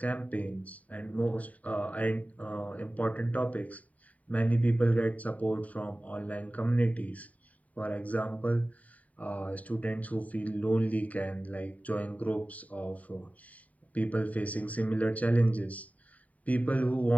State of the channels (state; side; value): late; right; 0.070 ms